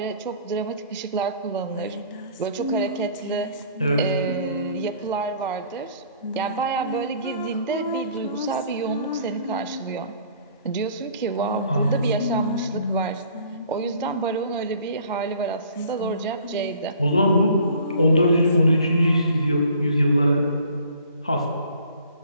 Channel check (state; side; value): inverted; both; correlation -0.53